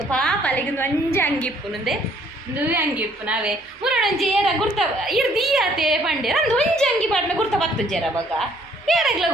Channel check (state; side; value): normal; both; correlation 0.63